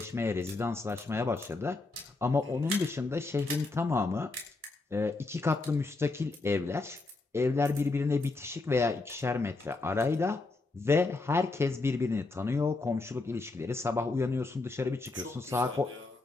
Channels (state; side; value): quieter; right; 3.5 dB